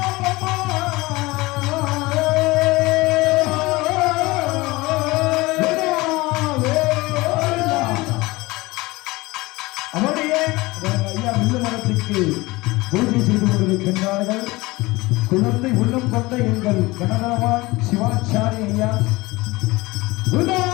ஐயா வில்லு மரத்துக்கு பூஜை செய்து கொண்டிருக்கின்றார்கள். குழந்தை உள்ளம் கொண்ட எங்கள் கனகரவான் சிவாச்சாரி ஐயா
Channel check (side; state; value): right; quieter; 21.6 dB